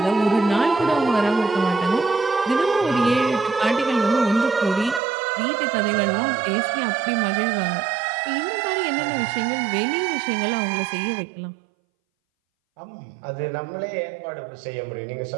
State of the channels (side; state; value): left; drops out; at 5.0 s